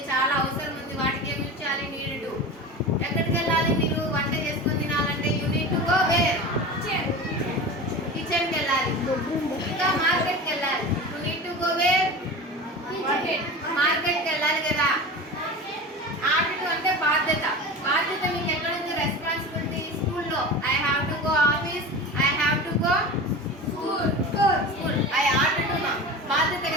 చాలా అవసరం ఉంది, వాటికి ఏం యూజ్ చేయాలి? need to. ఎక్కడికి వెళ్ళాలి? మీరు వంట చేసుకొని తినాలంటే you need to go where? కిచెన్కి వెళ్ళాలి. ఇంకా మార్కెట్కి వెళ్ళాలి. You need to go where? మార్కెట్కి వెళ్ళాలి కదా. ఆర్ట్ అంటే బాధ్యత. మీకు ఎక్కడ ఉంది? రెస్పాన్సిబిలిటీ. స్కూల్లో I have to go office. I have to go school. I art to బాధ్యత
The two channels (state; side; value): normal; both; correlation 0.31